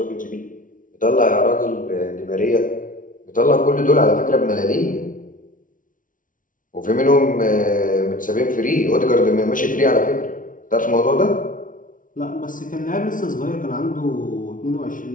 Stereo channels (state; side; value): late; right; 0.38 ms